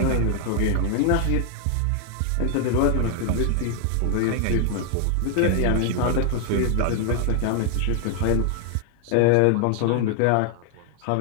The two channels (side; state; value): both; different; correlation 0.00